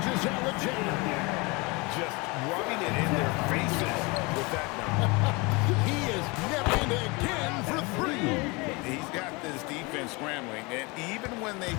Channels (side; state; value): right; quieter; 26.7 dB